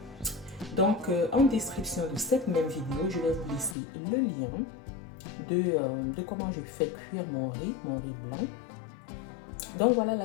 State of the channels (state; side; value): drops out; right; at 3.8 s